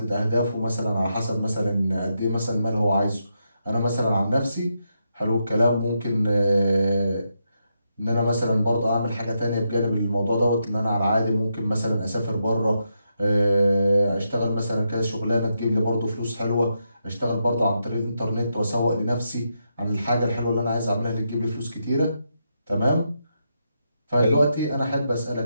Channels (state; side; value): inverted; both; correlation -0.83